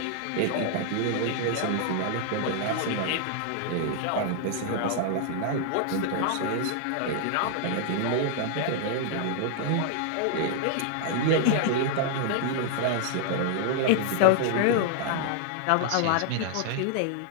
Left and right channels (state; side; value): different; both; correlation 0.00